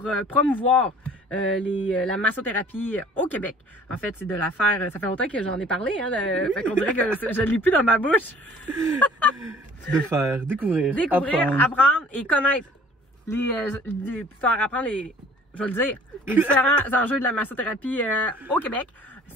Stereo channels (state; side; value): normal; both; correlation 0.52